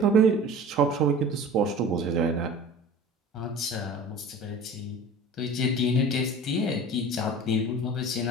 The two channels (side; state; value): both; normal; correlation 0.40